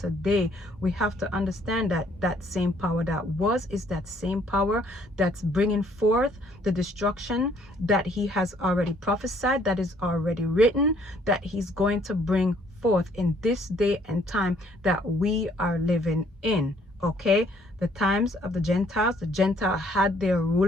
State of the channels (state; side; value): normal; both; correlation 0.63